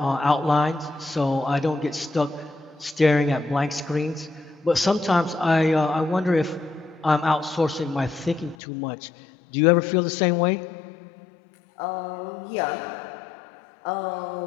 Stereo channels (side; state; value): right; drops out; at 8.6 s